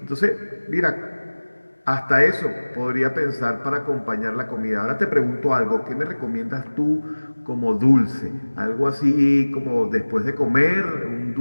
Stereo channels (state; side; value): inverted; both; correlation -1.00